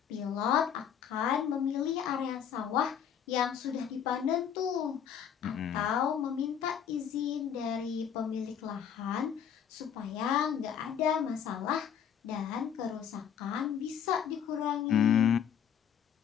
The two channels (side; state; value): right; quieter; 8.5 dB